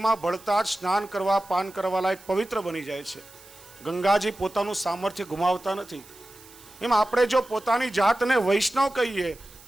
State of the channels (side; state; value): right; noise; hiss, 22 dB below the sound